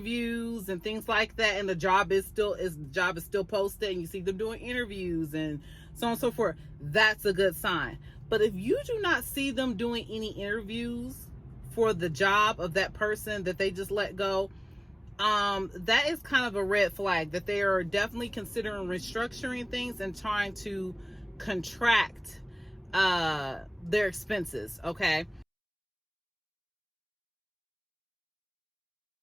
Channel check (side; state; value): both; identical; correlation 1.00